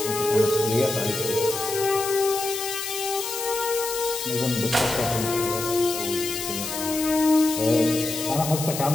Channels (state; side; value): noise; left; hiss, 6 dB below the sound